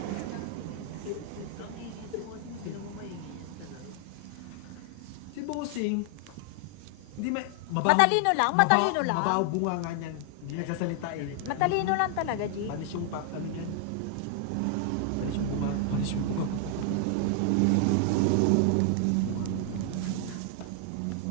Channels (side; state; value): both; different; correlation 0.00